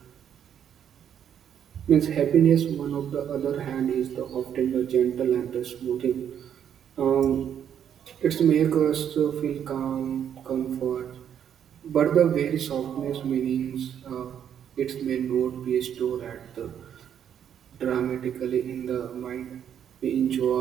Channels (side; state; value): left; quieter; 9.1 dB